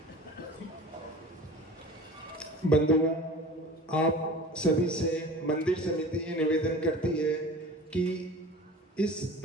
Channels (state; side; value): normal; both; correlation 0.39